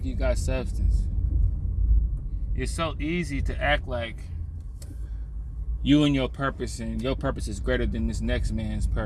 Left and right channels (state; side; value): identical; both; correlation 1.00